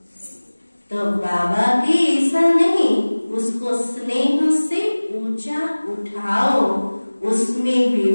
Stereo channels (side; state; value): both; inverted; correlation -1.00